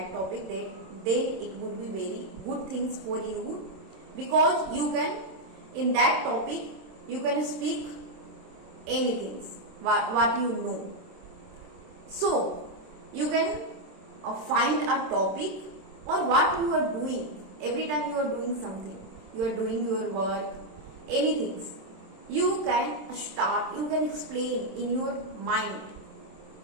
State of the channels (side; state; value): left; late; 27 ms